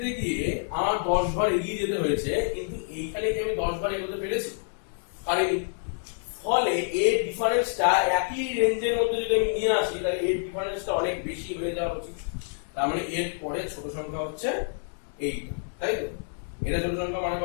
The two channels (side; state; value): right; silent; digital silence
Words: গিয়ে আমার 10 বার এগিয়ে যেতে হয়েছে, কিন্তু এইখানে কি আমি 10 বার এগোতে পেরেছি? পারিনি। ফলে এর ডিফারেন্সটা একই রেঞ্জের মধ্যে যদি আমি নিয়ে আসি, তাহলে এর ডিফারেন্সটা অনেক বেশি হয়ে যাওয়া উচিত। তার মানে এর পরে ছোট সংখ্যা হচ্ছে এইটা, তাই তো? এটা ছোট সংখ্যা মানে